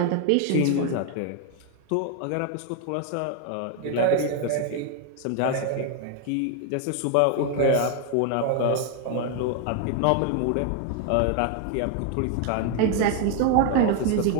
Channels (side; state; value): both; different; correlation 0.01